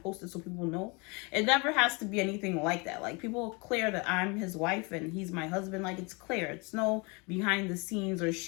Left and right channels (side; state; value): right; quieter; 29.6 dB